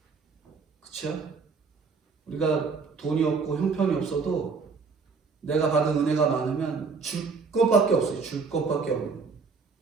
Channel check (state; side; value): quieter; left; 4.9 dB